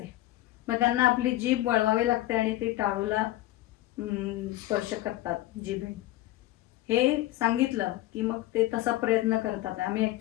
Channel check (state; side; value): quieter; right; 16.1 dB